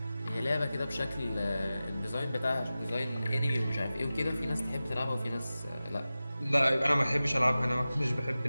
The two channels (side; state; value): both; inverted; correlation -0.95